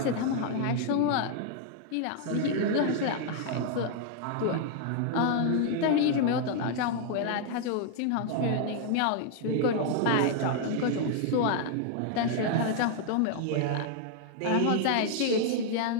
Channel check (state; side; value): different; both; correlation 0.00